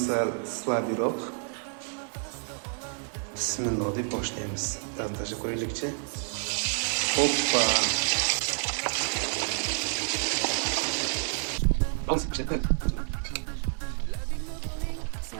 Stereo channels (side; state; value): left; silent; 59 dB below the other